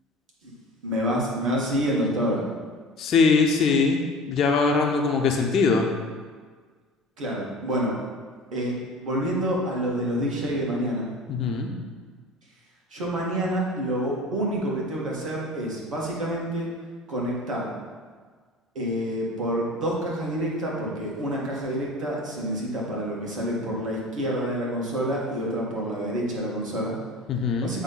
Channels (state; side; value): normal; both; correlation 0.38